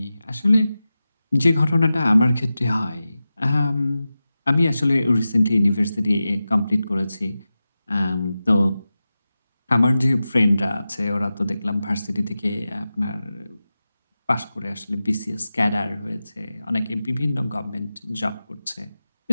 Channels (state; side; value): inverted; both; correlation -0.94